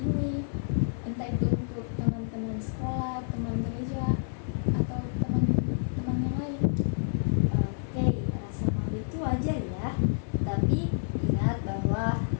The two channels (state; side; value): silent; right; digital silence